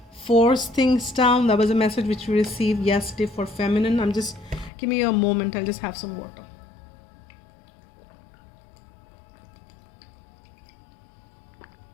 force things down. That was a message which we received yesterday for feminine. Give me a moment. I'll just have some water.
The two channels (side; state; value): right; drops out; at 4.7 s